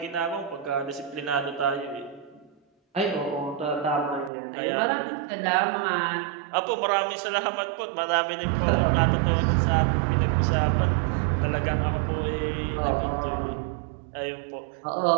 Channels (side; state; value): left; drops out; at 4.3 s